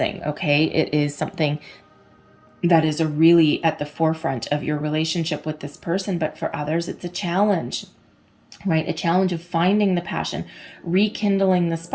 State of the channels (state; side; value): identical; both; correlation 1.00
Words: Okay, it is something that is really at the forefront of your relationship with this person, but for others it's a challenge, right? A challenge of finding the passion, rekindling the